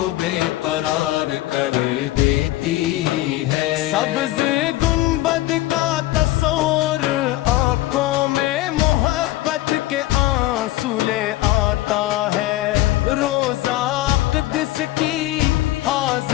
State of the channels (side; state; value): right; quieter; 16.8 dB